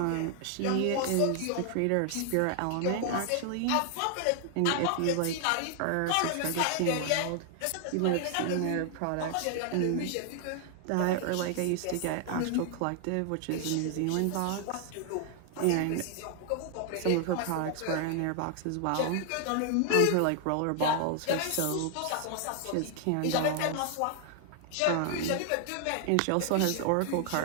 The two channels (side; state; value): both; different; correlation 0.00